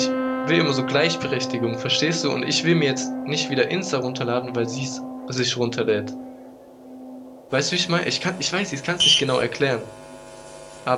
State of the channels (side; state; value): both; identical; correlation 1.00